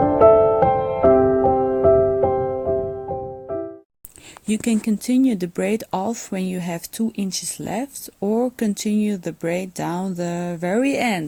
You can continue the braid off when you have 2 inches left, or continue the braid down the very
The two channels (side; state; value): both; identical; correlation 1.00